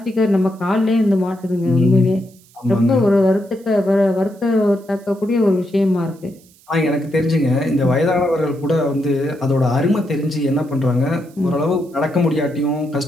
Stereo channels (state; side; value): noise; right; hiss, 29 dB below the sound